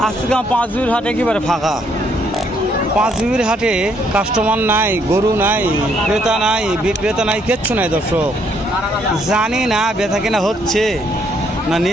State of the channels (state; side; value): normal; both; correlation 0.70